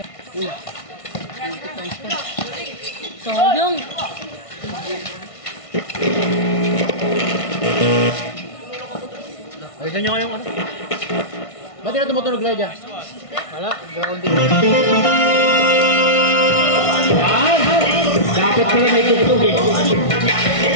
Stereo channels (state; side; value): late; right; 1.5 ms